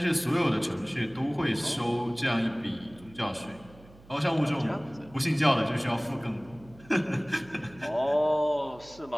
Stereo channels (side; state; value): right; noise; hum, 23 dB below the sound